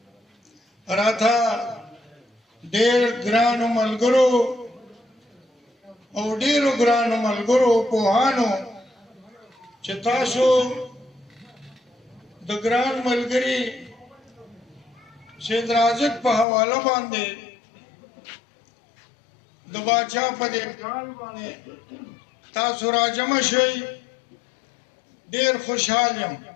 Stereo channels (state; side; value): drops out; right; at 16.4 s